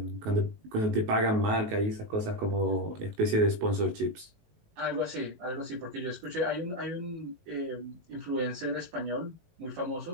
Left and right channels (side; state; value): left; late; 19 ms